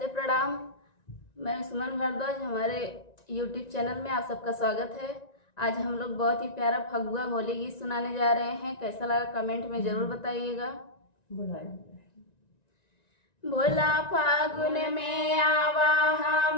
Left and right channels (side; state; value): right; late; 1.9 ms